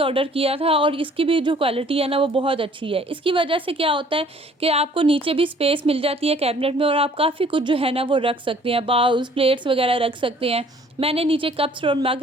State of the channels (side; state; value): both; normal; correlation 0.56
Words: किया था और इसकी भी जो क्वालिटी है ना वो बहुत अच्छी है। इसकी वजह से क्या होता है कि आपको नीचे भी स्पेस मिल जाती है कैबिनेट में और आप काफ़ी कुछ जो है ना वो रख सकते हैं, बाउल्स, प्लेट्स वगैरह रख सकते हैं। मैंने नीचे कप्स और